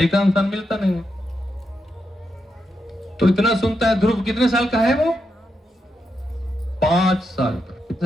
इंसान मिलता नहीं है। तो इतना सुनता है। ध्रुव कितने साल का है वो? 5 साल का।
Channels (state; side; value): normal; both; correlation 0.84